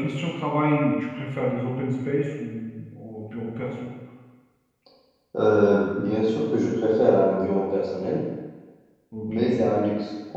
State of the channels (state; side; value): identical; both; correlation 1.00